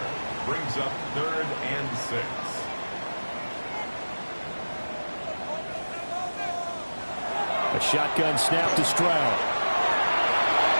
Brings up 3rd and 6. A shotgun snap to Stroud.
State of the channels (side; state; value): both; inverted; correlation -1.00